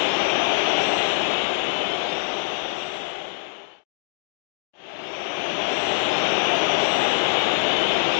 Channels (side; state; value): right; silent; digital silence